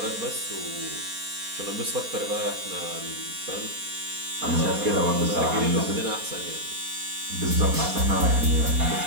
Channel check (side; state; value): left; late; 4.2 ms